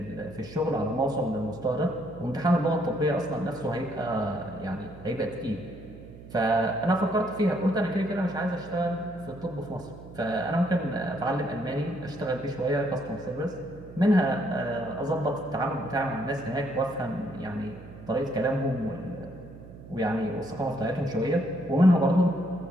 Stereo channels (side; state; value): right; noise; hum, 16 dB below the sound